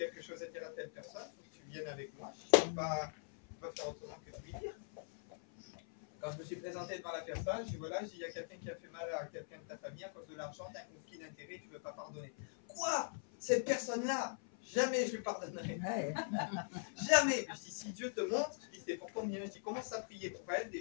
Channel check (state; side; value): silent; right; 50 dB below the other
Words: chose à dire à telle personne, il faut que tu viennes avec moi. Je ne peux pas faire autrement que de lui dire. Quand je me suis présenté devant la personne, je dis voilà, il y a quelqu'un qui a fait mal à quelqu'un de ta famille à cause de l'argent, tu as un conflit d'intérêt, tu ne veux pas pardonner. Quoi? Cette personne-là, jamais je lui pardonnerai. Jamais. Je dis si Dieu te montre, je dis c'est pour combien? Je dis commence à prier pour elle